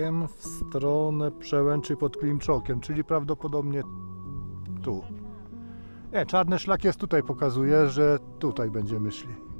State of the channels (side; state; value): both; inverted; correlation -1.00